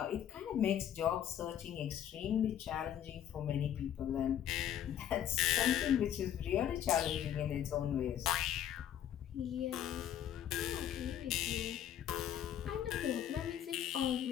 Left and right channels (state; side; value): quieter; right; 10.3 dB